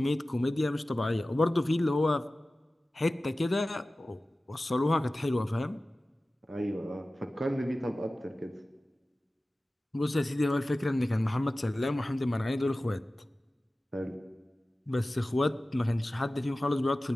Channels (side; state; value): both; normal; correlation 0.96